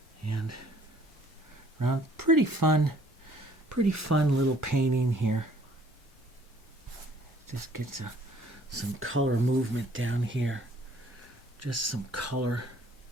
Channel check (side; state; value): both; normal; correlation 0.59